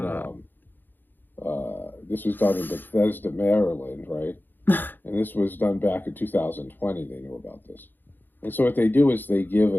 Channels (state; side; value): late; right; 0.091 ms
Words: this was done in Bethesda, Maryland, right? And this was done back in 2020. They knew about this. And so what they do is they give